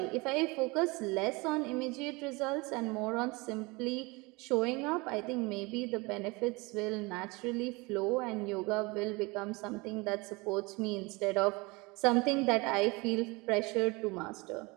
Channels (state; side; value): quieter; left; 25.6 dB